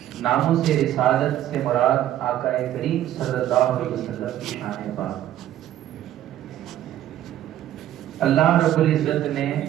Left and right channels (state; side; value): quieter; left; 12.4 dB